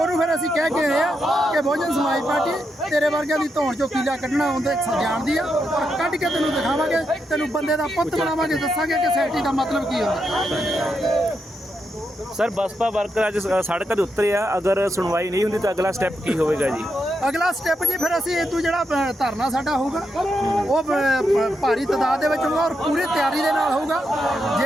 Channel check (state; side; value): normal; both; correlation 0.83